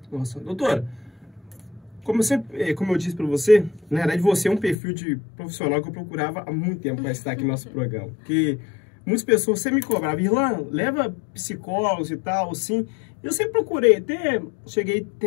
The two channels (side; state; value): right; drops out; at 4.8 s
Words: Nossa, doutora, como eu disse para você, na verdade você é um perfil de profissional que eu procurava há muito tempo para estar aqui no nosso programa. Porque muitas pessoas sempre me cobravam, Irlan, leva psicólogos e tal, assim. Eu sempre procurei, até cheguei a